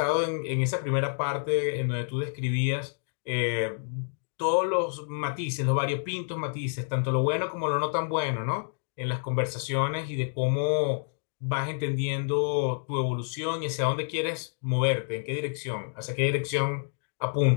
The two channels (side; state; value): right; silent; digital silence